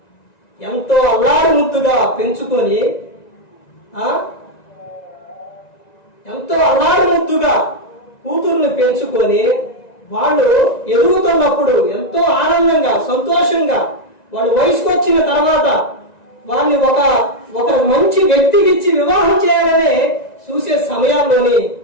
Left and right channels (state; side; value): late; right; 1.9 ms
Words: ఎంతో అల్లారు ముద్దుగా పెంచుకొని ఎంతో అల్లారు ముద్దుగా కూతుర్ని పెంచుకొని వాళ్ళు ఎదుగుతున్నప్పుడు ఎంతో ఆనందంగా, సంతోషంగా వాళ్ళు వయసుకు వచ్చిన తర్వాత వాళ్ళని ఒక మంచి వ్యక్తికి ఇచ్చి వివాహం చేయాలని చూసే సమయాల్లోని